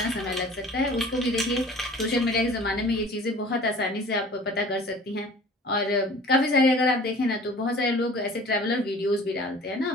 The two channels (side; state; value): both; normal; correlation 0.46